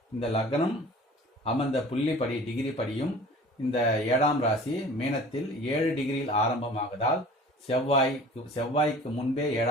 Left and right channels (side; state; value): both; normal; correlation 0.45